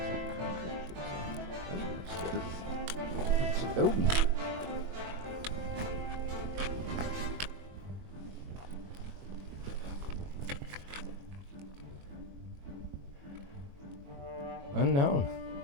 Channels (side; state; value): left; late; 22 ms